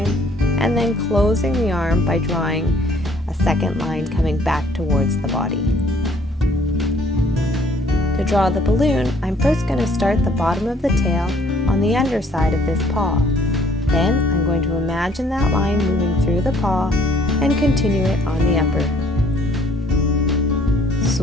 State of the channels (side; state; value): both; normal; correlation 0.60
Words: and then closing the arm by drawing a second line coming back towards the body. To draw the balloon, I'm first going to start the bottom of the tail on the underside of this paw. Then I'm going to imagine that line moving through the paw and continue it on the upper.